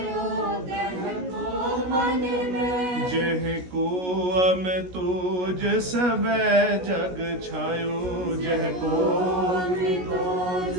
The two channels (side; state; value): left; late; 16 ms